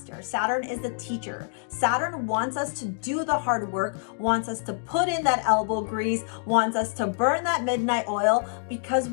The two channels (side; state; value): right; silent; digital silence